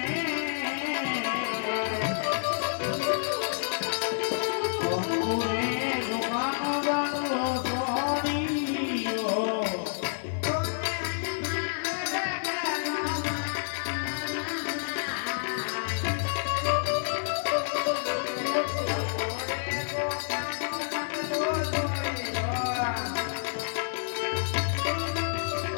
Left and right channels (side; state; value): right; silent; digital silence